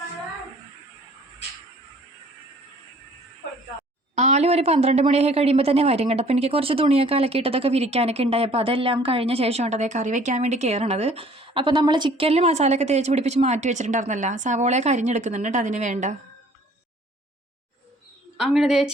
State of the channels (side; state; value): both; normal; correlation 0.54